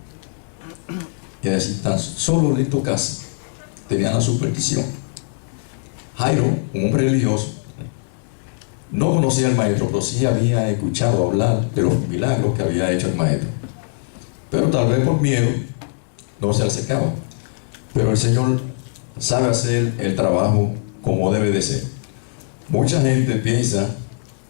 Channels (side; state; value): right; silent; digital silence